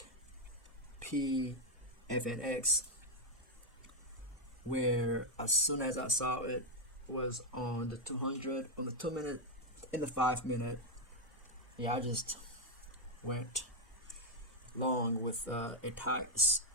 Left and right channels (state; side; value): normal; both; correlation 0.02